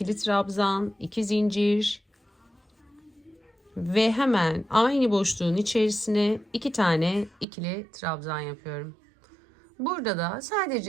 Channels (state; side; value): drops out; left; at 7.5 s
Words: trabzan, 2 zincir ve hemen aynı boşluğun içerisine 2 tane ikili trabzan yapıyorum. Burada da